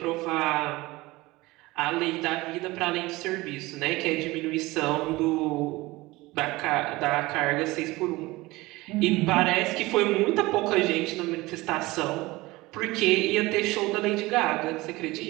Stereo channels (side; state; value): left; quieter; 20.6 dB